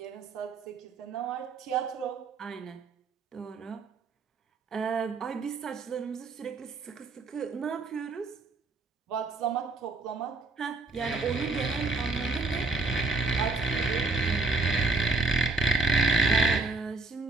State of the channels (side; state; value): left; quieter; 3.6 dB